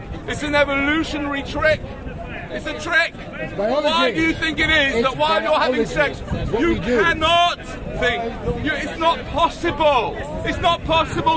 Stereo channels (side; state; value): both; identical; correlation 1.00